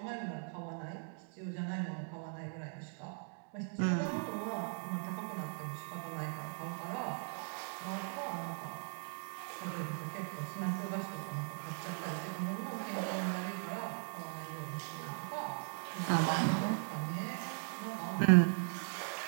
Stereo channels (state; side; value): silent; left; 52 dB below the other